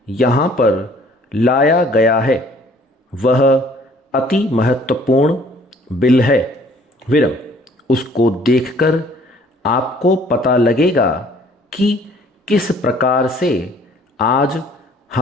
यहाँ पर लाया गया है वह अति महत्वपूर्ण बिल है। विरम, उसको देखकर आपको पता लगेगा कि किस प्रकार से आज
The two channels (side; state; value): both; normal; correlation 0.57